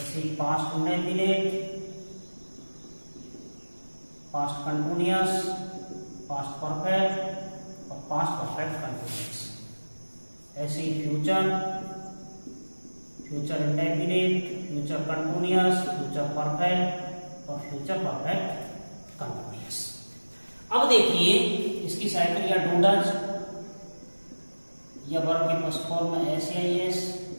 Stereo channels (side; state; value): both; inverted; correlation -1.00